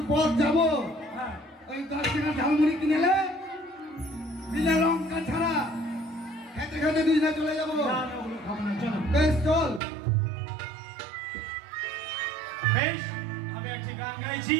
পথ যাবো? ওই 10 টাকা ঝালমুড়ি কিনেলে বিনা লঙ্কা ছাড়া খেতে খেতে দুজনে চলে যাবো। বেশ চল। বেশ আমি একটি গান গাইছি,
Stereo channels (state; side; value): drops out; left; at 9.8 s